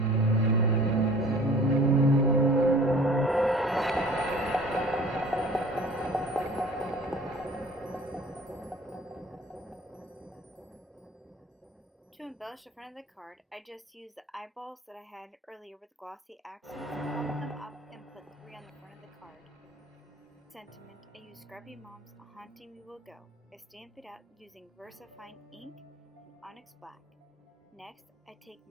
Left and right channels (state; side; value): normal; both; correlation 0.47